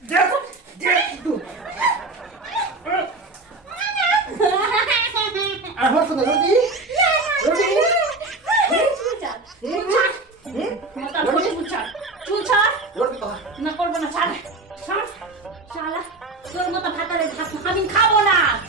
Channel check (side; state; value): left; quieter; 3.3 dB